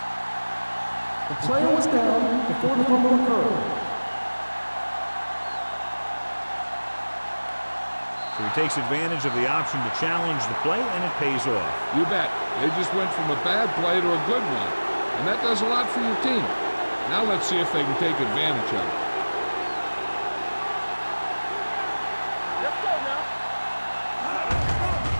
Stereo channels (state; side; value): inverted; both; correlation -1.00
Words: The player was down before the fumble occurred. So he takes advantage of the option to challenge the play, and it pays off. You bet. They just went from a bad play to a good one, and that does a lot for your team. Now let's see if they can take advantage of it. Let's go now.